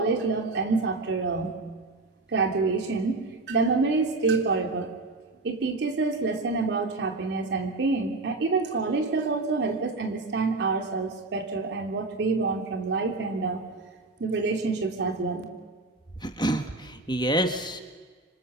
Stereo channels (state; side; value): quieter; left; 3.3 dB